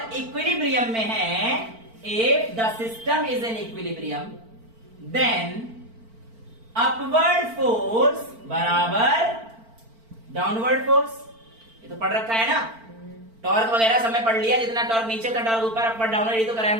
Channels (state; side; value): late; left; 4.4 ms